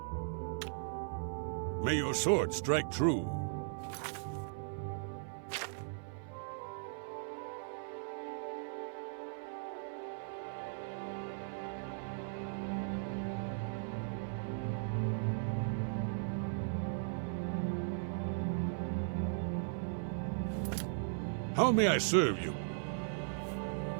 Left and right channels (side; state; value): left; silent; 53 dB below the other